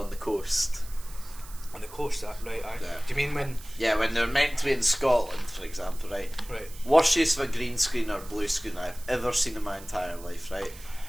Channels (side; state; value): right; noise; hiss, 18 dB below the sound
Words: the coast. On the coast, right? Yeah. Do you mean when? Yeah, when they're meant to be in Scotland, for example, right? Right. Worst use of a green screen or blue screen I've ever seen in my entire life, right?